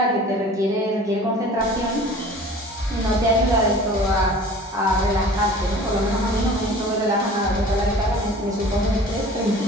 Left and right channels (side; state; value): both; normal; correlation 0.44